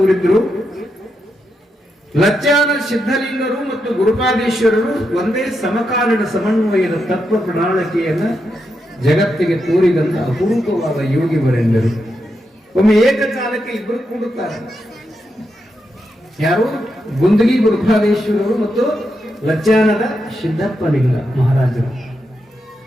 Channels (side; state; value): both; normal; correlation 0.84